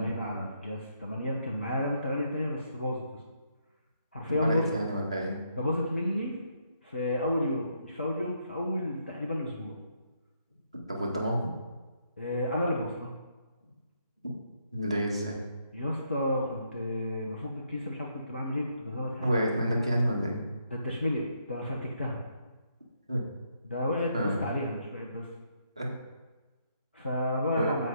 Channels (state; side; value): inverted; both; correlation -0.75